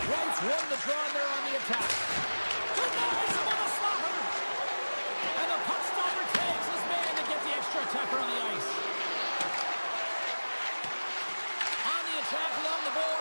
Wright's won the draw there on the attack. Denies him on the slapper. And the puck stopper tags his man to get the extra attacker on the ice. On the attack along the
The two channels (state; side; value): inverted; both; correlation -1.00